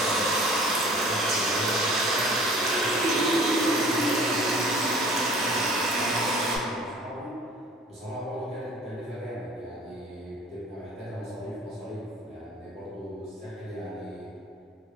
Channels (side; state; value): both; normal; correlation 0.48